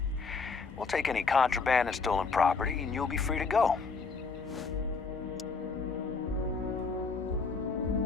We'll take any contraband and stolen property, and you'll be free to go.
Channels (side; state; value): right; quieter; 4.6 dB